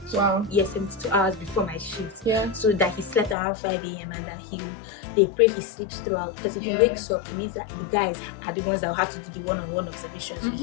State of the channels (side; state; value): right; drops out; at 3.4 s